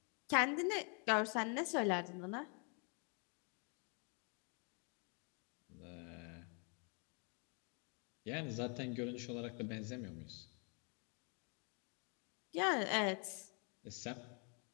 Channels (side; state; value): right; quieter; 38.0 dB